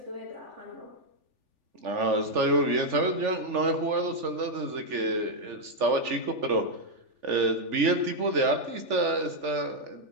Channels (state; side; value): late; left; 3.4 ms